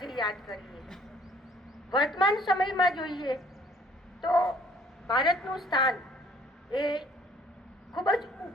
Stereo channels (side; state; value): both; normal; correlation 0.58